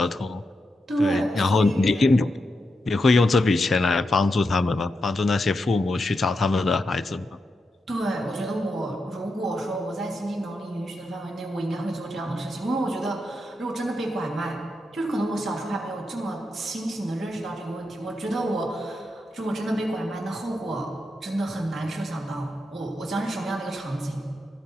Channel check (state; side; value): normal; both; correlation 0.86